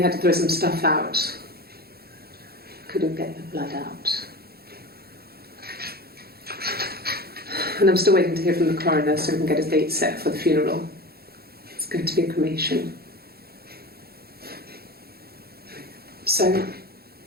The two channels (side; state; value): left; late; 0.45 ms